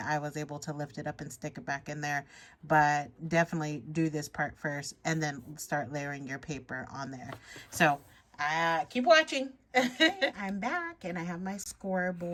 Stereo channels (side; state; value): both; identical; correlation 1.00